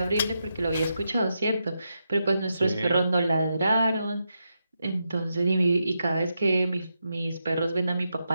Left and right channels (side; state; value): both; inverted; correlation -0.85